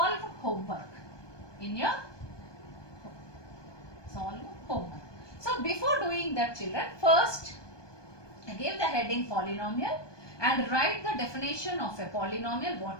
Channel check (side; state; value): right; late; 1.2 ms